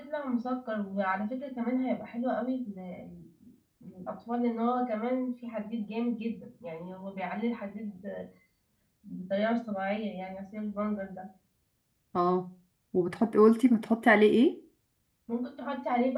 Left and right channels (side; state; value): both; identical; correlation 1.00